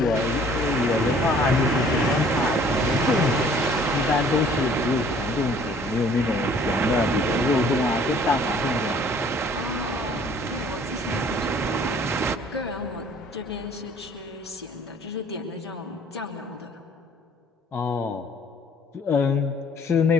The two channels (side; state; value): both; normal; correlation 0.55